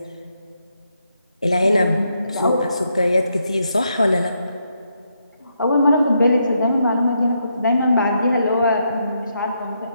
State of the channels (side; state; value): both; inverted; correlation -0.79